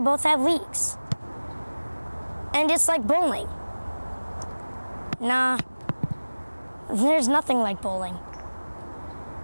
have leagues. And it's like bowling. Nah, there's nothing like bowling.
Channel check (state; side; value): inverted; both; correlation -1.00